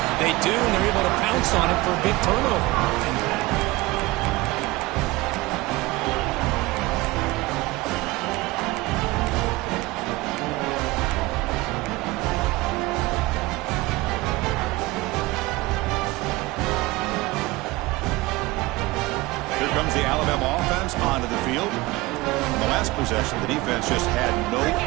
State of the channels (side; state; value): left; quieter; 20.9 dB